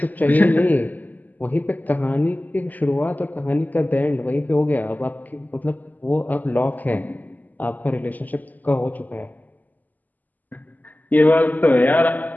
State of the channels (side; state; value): right; late; 0.082 ms